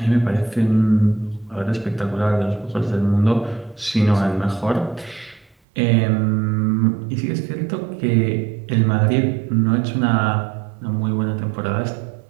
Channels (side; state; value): left; drops out; at 5.6 s